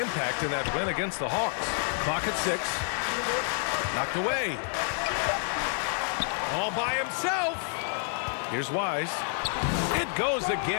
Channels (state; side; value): silent; right; 59 dB below the other